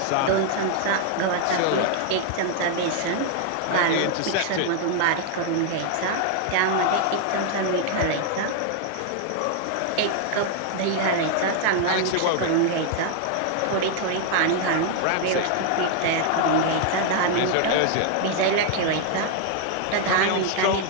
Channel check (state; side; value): different; both; correlation 0.00